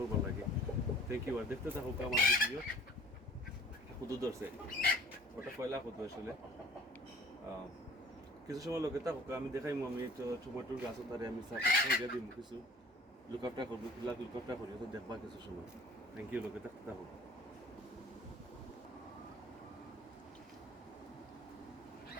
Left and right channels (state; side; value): normal; both; correlation 0.51